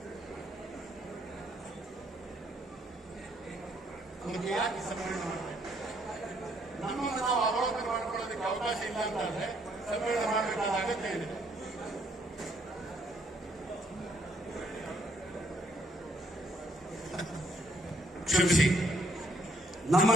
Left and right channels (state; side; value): normal; both; correlation 0.69